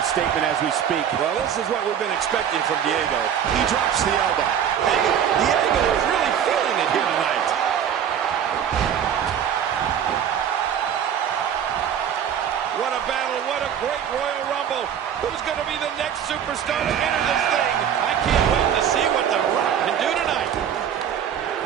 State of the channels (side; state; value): left; quieter; 8.9 dB